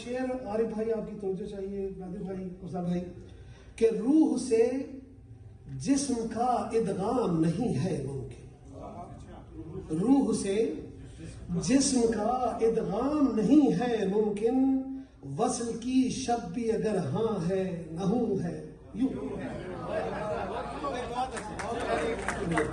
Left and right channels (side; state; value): both; identical; correlation 1.00